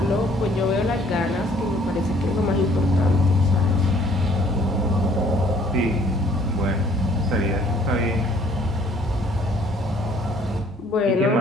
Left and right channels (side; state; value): both; normal; correlation 0.60